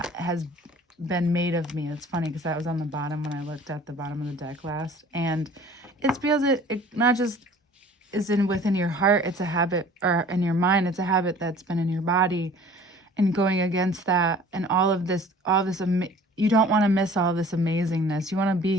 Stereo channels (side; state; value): both; normal; correlation 0.48